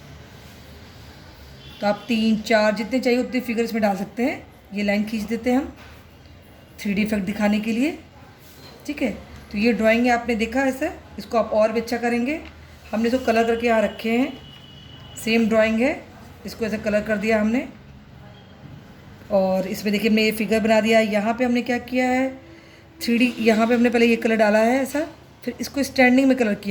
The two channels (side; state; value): both; identical; correlation 1.00